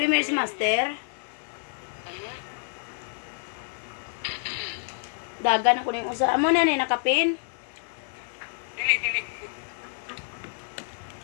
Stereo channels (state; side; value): silent; right; digital silence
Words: si Master. Dagan ako ning usa. Amo na ni nakapin. Dili.